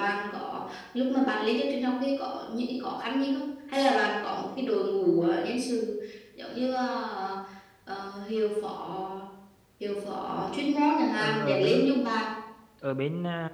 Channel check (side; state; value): both; identical; correlation 1.00